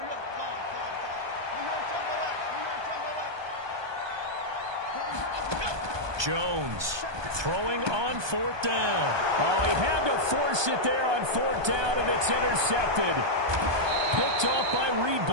Jones throwing on 4th down. Oh, he had to force it there on 4th down, and it's intercepted. Picked off by Reed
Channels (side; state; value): left; late; 1.2 ms